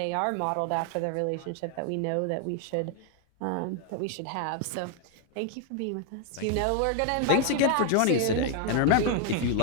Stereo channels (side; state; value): both; different; correlation 0.00